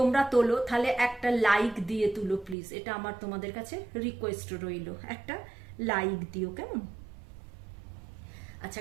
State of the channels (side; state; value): left; drops out; at 2.6 s